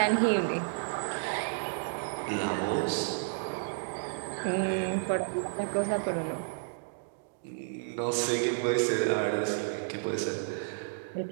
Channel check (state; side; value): silent; left; digital silence